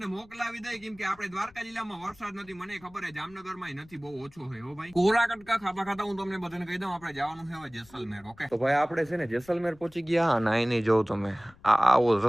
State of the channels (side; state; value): left; noise; rumble, 26 dB below the sound